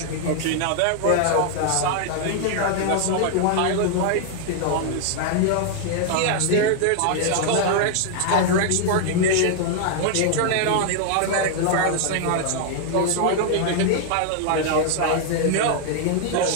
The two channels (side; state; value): both; different; correlation 0.00